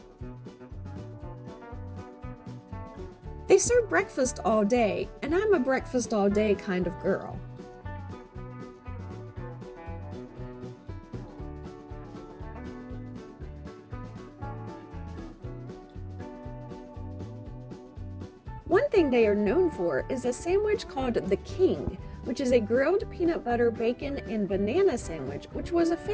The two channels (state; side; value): identical; both; correlation 1.00